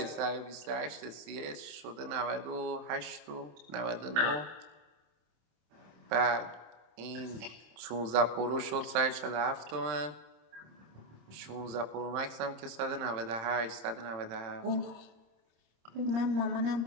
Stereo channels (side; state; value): left; late; 27 ms